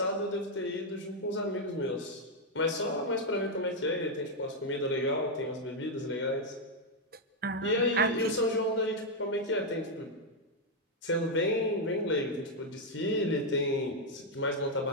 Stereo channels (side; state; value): both; normal; correlation 0.00